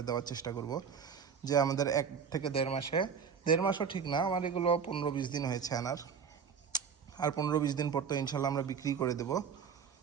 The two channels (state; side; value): quieter; left; 6.7 dB